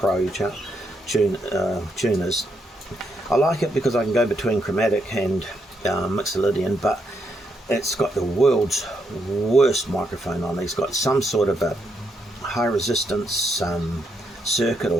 tuners. I like it because I can go between chromatic and Mixolydian, but it's got the world's worst microphone on it. It's got some sort of a high resistance circuit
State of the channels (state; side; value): normal; both; correlation 0.78